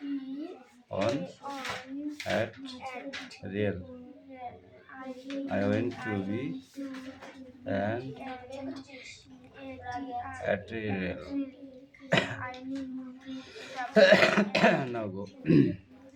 on at rail. I went to be and at rail. Now go.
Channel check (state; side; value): identical; both; correlation 1.00